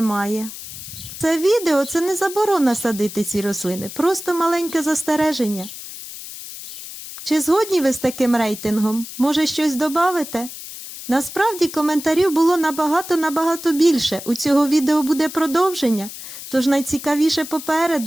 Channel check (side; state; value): left; noise; hiss, 12 dB below the sound